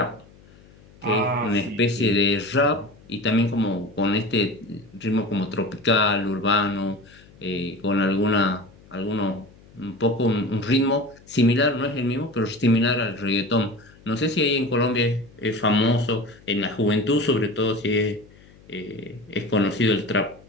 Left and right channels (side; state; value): left; noise; hum, 25 dB below the sound